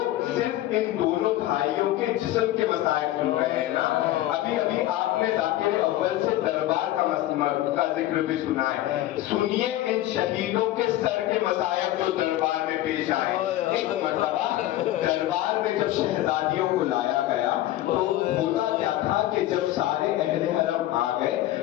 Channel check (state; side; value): quieter; right; 14.8 dB